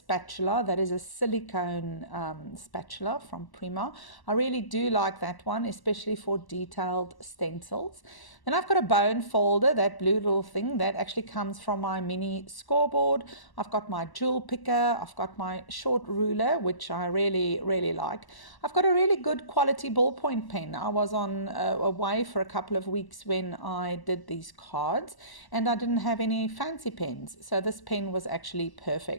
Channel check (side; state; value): right; late; 1.1 ms